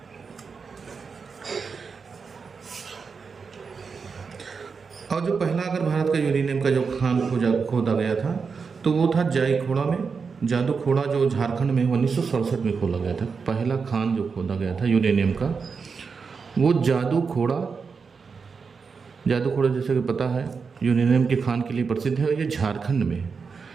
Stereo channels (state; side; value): quieter; left; 5.3 dB